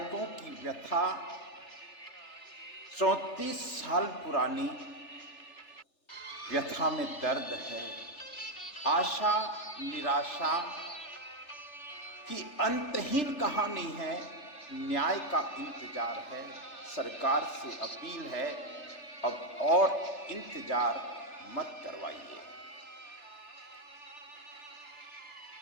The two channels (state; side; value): late; right; 3.3 ms